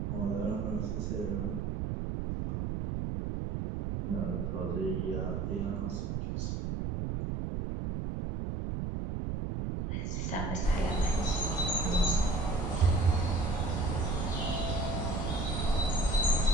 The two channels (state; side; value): noise; right; rumble, 1 dB below the sound